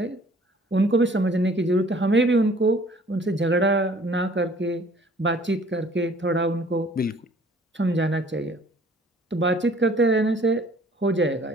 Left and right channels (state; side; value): normal; both; correlation 0.55